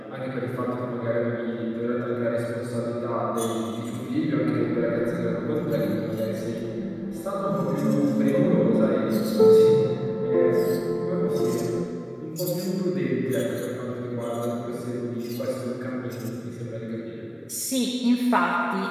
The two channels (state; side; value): identical; both; correlation 1.00